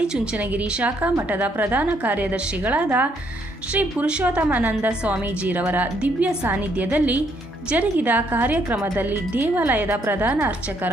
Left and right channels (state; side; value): normal; both; correlation 0.70